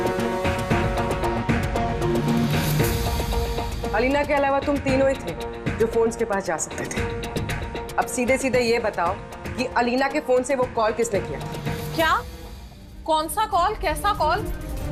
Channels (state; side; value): identical; both; correlation 1.00